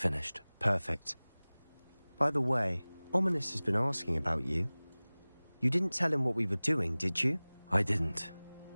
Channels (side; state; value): both; inverted; correlation -1.00